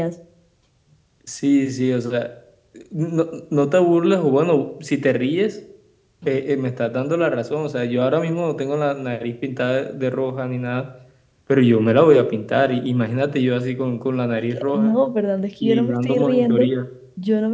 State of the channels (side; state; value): both; identical; correlation 1.00